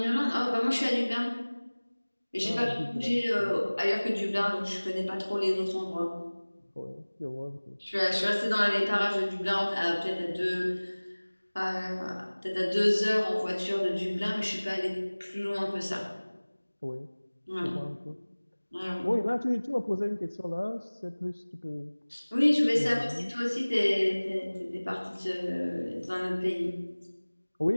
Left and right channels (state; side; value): inverted; both; correlation -1.00